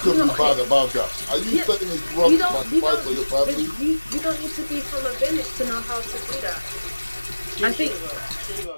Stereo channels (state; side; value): inverted; both; correlation -1.00